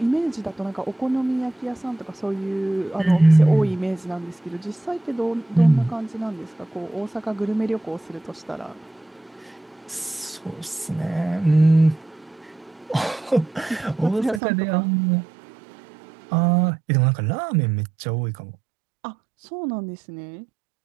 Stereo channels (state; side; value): drops out; left; at 14.4 s